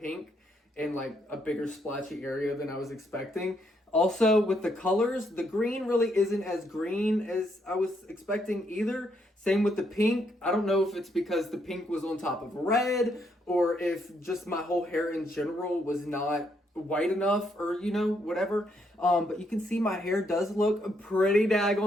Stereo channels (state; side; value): normal; both; correlation 0.74